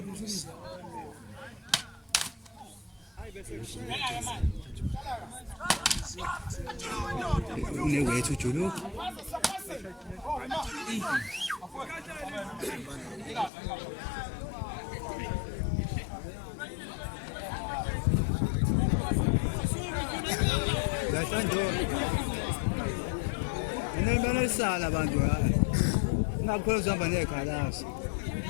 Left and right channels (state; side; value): drops out; right; at 13.5 s